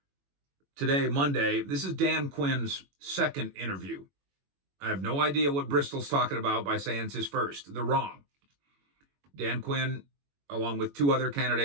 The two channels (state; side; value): late; left; 21 ms